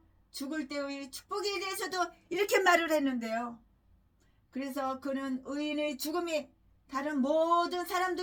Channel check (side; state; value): both; identical; correlation 1.00